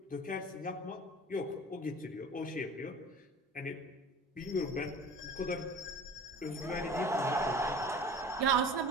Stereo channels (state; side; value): normal; both; correlation 0.41